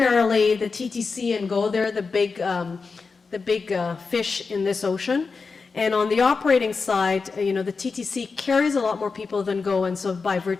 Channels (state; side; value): quieter; right; 4.7 dB